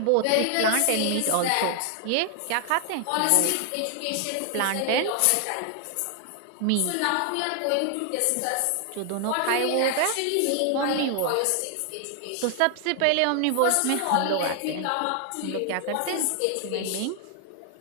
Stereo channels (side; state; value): both; different; correlation 0.00